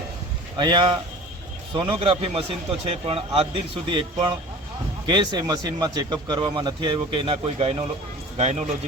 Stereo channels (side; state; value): both; normal; correlation 0.41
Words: અહીંયા સોનોગ્રાફી મશીન તો છે, પણ આજ દિન સુધી એક પણ કેસ એ મશીનમાં ચેકઅપ કરવામાં નથી આવ્યો કે એના કોઈ